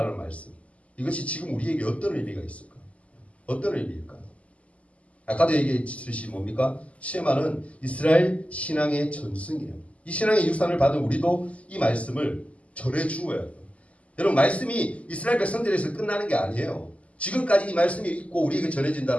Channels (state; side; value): late; right; 0.067 ms